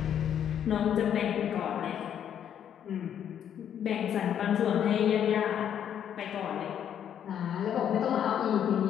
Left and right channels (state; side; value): quieter; right; 9.4 dB